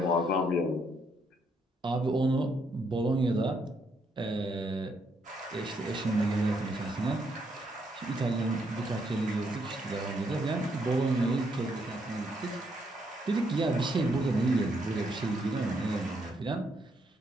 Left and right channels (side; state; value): both; normal; correlation 0.75